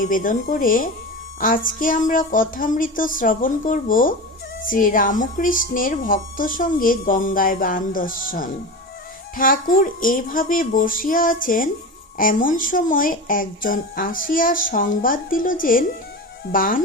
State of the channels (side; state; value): both; normal; correlation 0.26